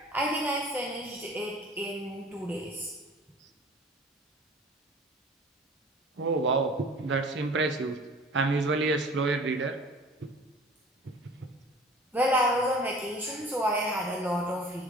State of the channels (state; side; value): normal; both; correlation 0.46